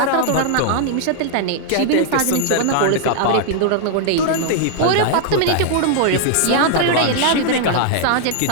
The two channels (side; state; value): both; different; correlation -0.01